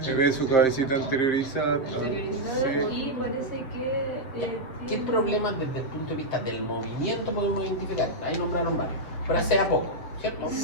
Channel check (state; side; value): late; right; 7.2 ms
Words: le ve su cabecita anteriorizada. Interiorizado Sí. y parece que... ¿Qué problemas desde el punto de vista del movimiento podemos identificar? Ahí nombraron varios, pero hace a poco, ¿cierto?